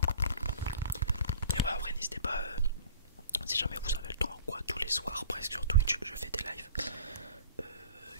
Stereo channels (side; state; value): both; inverted; correlation -0.46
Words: Et ouais, en vrai, n'hésitez pas, si jamais vous avez le temps ou quoi, tous les soirs presque sur Twitch, je fais des lives